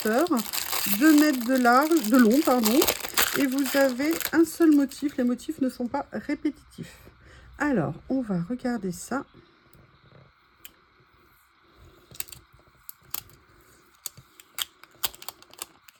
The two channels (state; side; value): identical; both; correlation 1.00